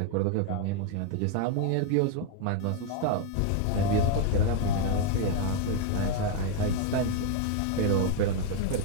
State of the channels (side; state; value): both; different; correlation 0.00